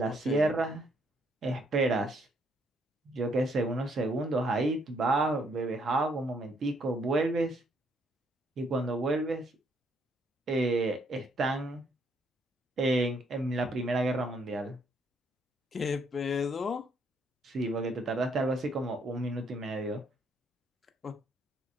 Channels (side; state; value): both; normal; correlation 0.70